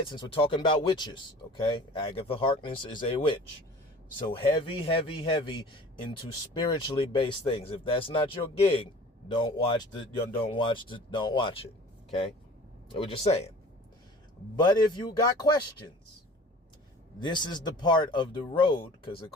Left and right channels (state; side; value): normal; both; correlation 0.44